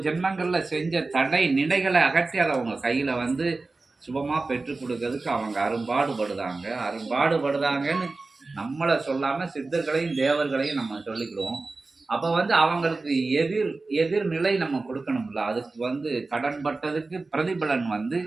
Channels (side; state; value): left; quieter; 3.6 dB